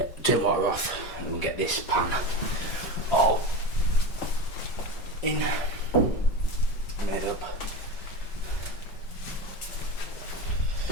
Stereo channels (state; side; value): late; right; 5.3 ms